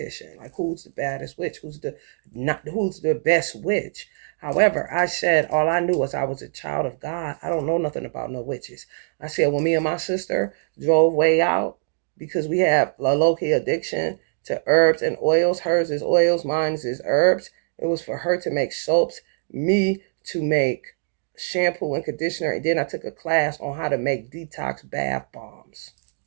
Like who's the baddest witch? Who's the best witch? However, I said all I knew was I was a child of God. I don't know nothing about no witches. I said when me and my sister drove way out because we have a low-key addiction to herbs and oils. Hers is oils, mine is herbs. It was for her to make soaps, me to make shampoo and conditioner, and then I took a class on how to make detox bath bombs.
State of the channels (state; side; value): silent; left; 63 dB below the other